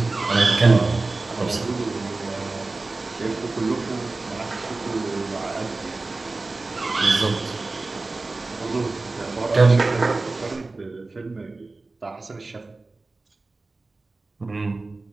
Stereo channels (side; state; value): left; quieter; 3.4 dB